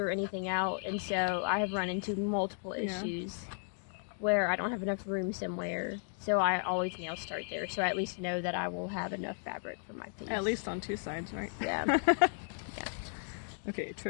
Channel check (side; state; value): right; silent; 55 dB below the other